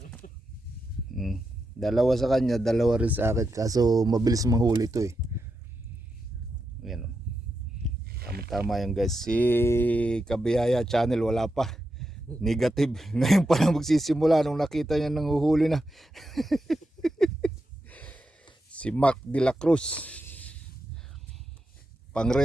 Dalawa sa kanya, dalawa rin sa akin. Kaso mabilis mahuli to eh. Yan o. Tama yan guys. Si Kabiyaya channel wala pa. Negative. Ngayon pa lang magsisimula nung nakita niya nang uhuli na. Si Mac de la Cruz.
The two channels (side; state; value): both; normal; correlation 0.86